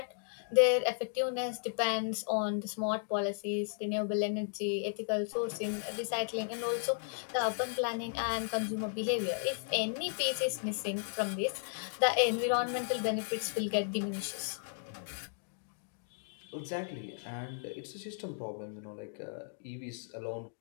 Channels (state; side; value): silent; right; digital silence